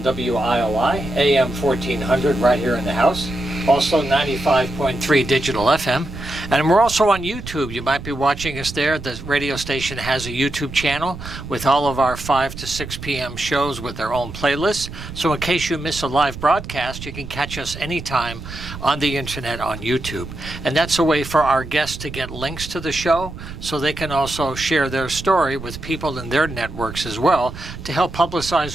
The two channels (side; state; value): right; noise; rumble, 11 dB below the sound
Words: WILI, AM 1400 right here in the house. Also 95.3 digital FM. And we're also on YouTube. You might be watching us there. The radio station has a YouTube channel with all of our 5 to 6 p.m. shows with their own playlists. So in case you miss a live broadcast, you can catch us anytime on the internet on YouTube. And that's a way for our guests to get links to the show so they can also share their story with people in their networks as well to help